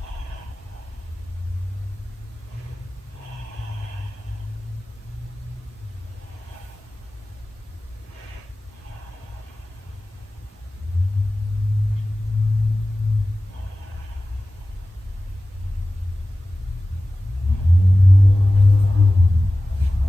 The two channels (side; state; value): both; normal; correlation 0.96